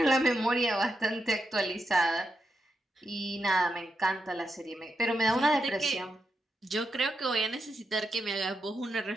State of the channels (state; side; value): normal; both; correlation 0.85